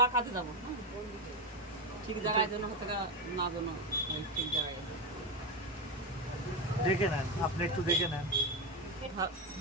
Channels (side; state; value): both; normal; correlation 0.13